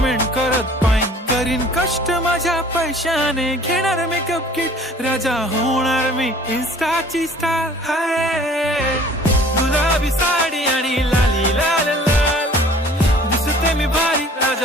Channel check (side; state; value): both; normal; correlation 0.51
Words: करत पाईन. करीन कष्ट माझ्या पैशाने घेणार मेकअप किट. राजा होणार मी इन्स्टाची स्टार. हाय गुलाबी साडी आणि लाली लाल लाल, दिसते मी भारी